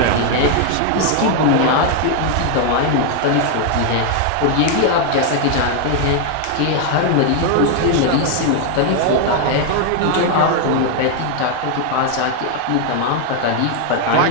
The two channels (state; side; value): different; both; correlation 0.00